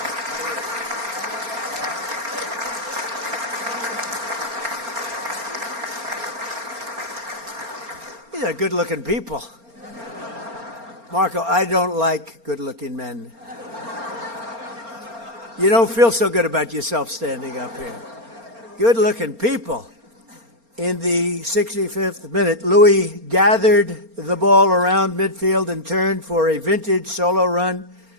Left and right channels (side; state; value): left; late; 4.3 ms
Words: These are good-looking people. Marco, I don't like good-looking men. You don't feel so good about yourself standing up here. Good-looking people. In the 65th minute, Louis gathered the ball around midfield and turned for a vintage solo run,